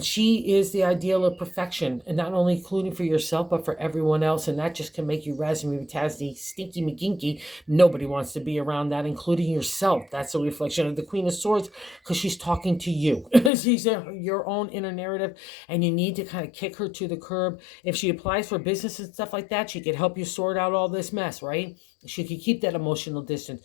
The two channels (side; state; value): right; drops out; at 13.5 s